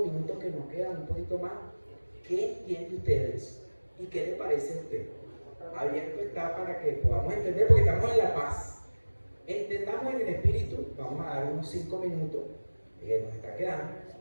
minutos que nos quedan, un poquito más, ¿qué entiende usted de eso? ¿Y qué le parece a usted? Abierto está para que podamos entender, porque estamos en la paz. Entendamos en el espíritu. Vamos a dar unos 5 minutos que nos está quedando,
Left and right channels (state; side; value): inverted; both; correlation -1.00